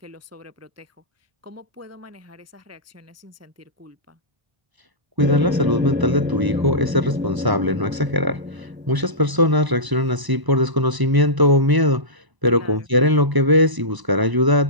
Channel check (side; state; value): left; late; 1.0 ms